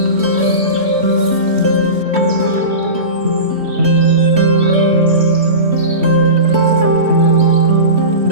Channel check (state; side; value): late; left; 3.1 ms